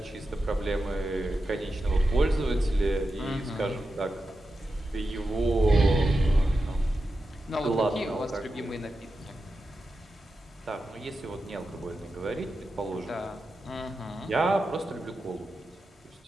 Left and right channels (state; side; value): normal; both; correlation 0.90